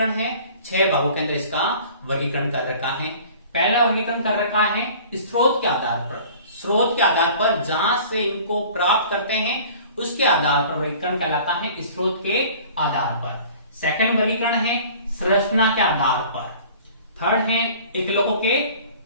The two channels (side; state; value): both; inverted; correlation -0.46